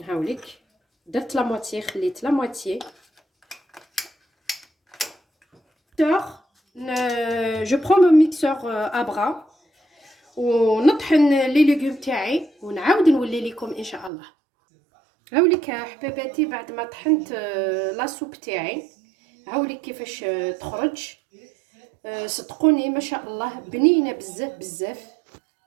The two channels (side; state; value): left; drops out; at 14.1 s